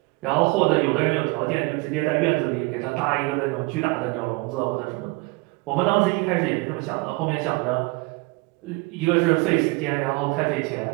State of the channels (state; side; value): quieter; left; 25.7 dB